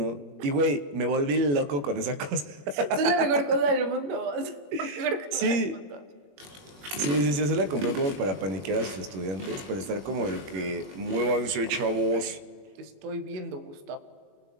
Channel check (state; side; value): late; left; 21 ms